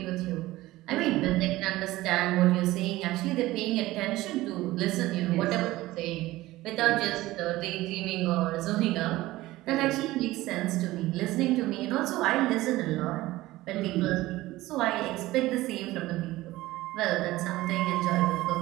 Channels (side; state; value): left; quieter; 17.6 dB